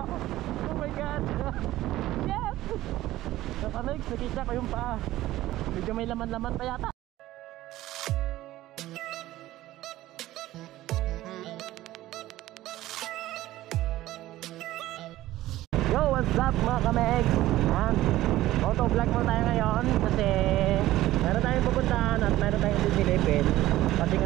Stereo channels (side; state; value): left; quieter; 15.6 dB